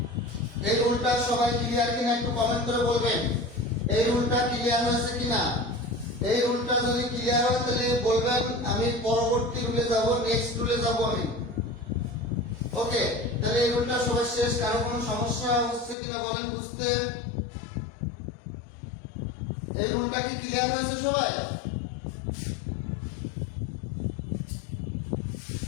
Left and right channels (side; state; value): right; drops out; at 16.0 s